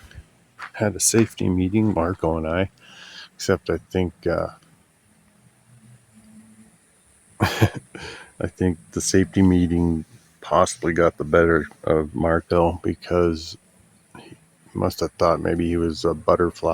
had a safety meeting, Marco and I. Except I think I think the safety meeting possibly got the better of Marco because he must have thought maybe he was a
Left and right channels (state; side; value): identical; both; correlation 1.00